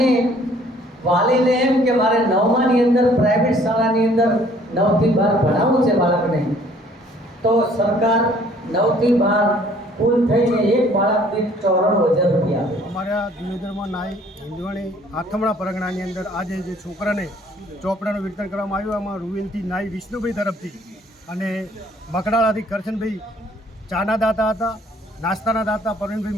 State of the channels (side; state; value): both; normal; correlation 0.58